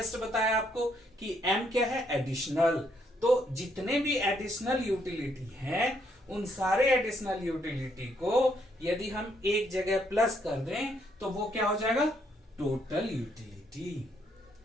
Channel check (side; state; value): both; normal; correlation 0.72